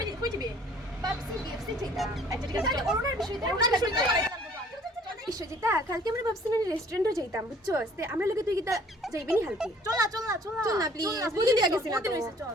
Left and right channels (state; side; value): normal; both; correlation 0.56